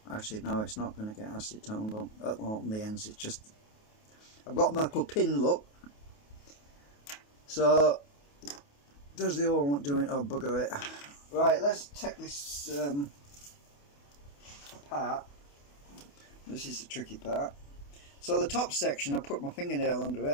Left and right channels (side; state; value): right; late; 28 ms